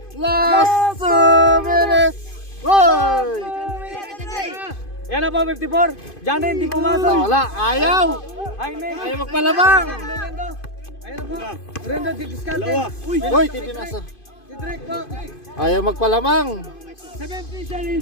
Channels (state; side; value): late; right; 2.5 ms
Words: Last 2 minutes! Uy! Yan na po, 54. Janet, hindi pumasok. Wala, ayaw! Jaime. Ayaw magpalamang! Rendo. Ayan na po. Rendo, didiskarte. Uy, tibinasa. Si Drake po. Ayaw magpalamang! 17 seconds